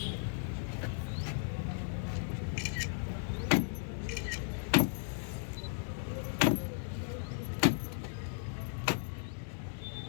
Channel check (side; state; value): right; silent; digital silence